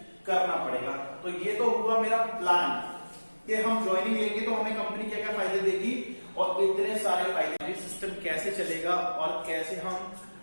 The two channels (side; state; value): both; inverted; correlation -1.00